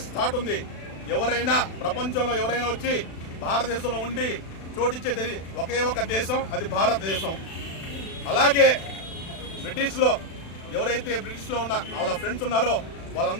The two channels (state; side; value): late; right; 36 ms